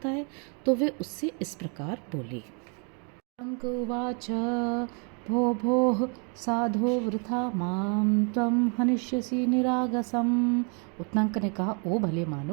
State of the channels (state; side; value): quieter; left; 37.1 dB